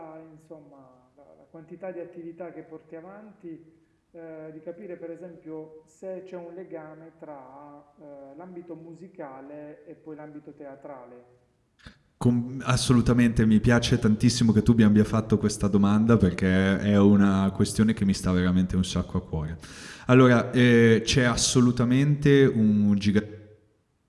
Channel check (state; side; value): identical; both; correlation 1.00